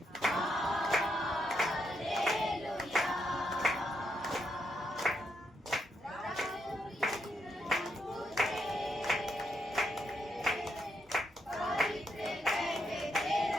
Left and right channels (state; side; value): normal; both; correlation 0.79